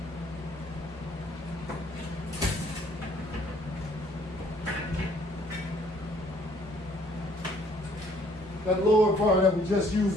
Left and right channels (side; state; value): both; normal; correlation 0.61